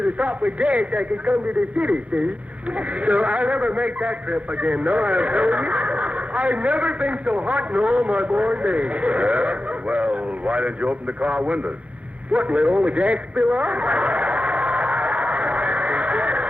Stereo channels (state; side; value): late; left; 0.065 ms